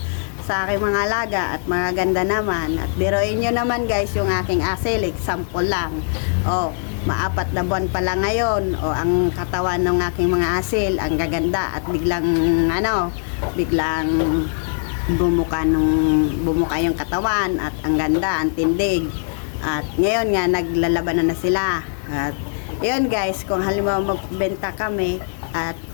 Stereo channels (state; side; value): silent; right; digital silence